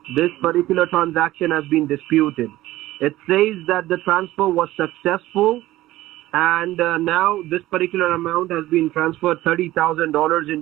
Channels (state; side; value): quieter; left; 16.2 dB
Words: This particular transaction has been disputed. It says that the transfer was successful, and now this particular amount has been transferred $30,000